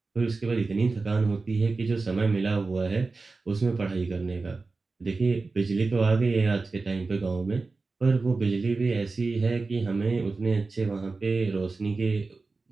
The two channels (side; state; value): left; quieter; 3.8 dB